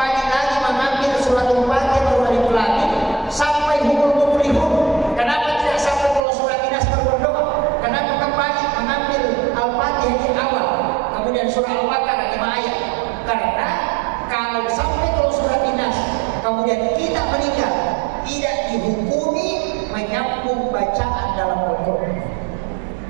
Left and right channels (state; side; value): drops out; left; at 6.2 s